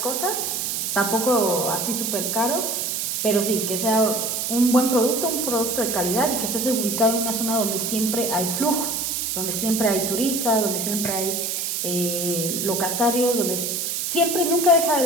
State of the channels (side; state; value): right; noise; hiss, 1 dB below the sound